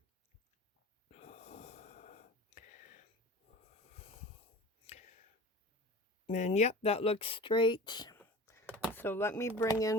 And yep, that looks straight. So let me bring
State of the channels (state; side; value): normal; both; correlation 0.39